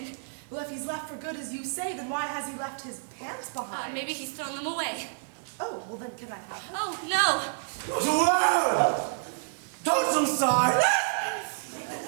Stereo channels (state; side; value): silent; left; digital silence